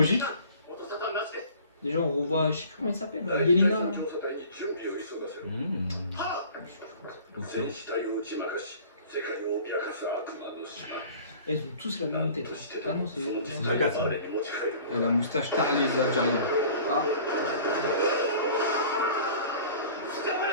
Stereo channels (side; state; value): both; inverted; correlation -0.46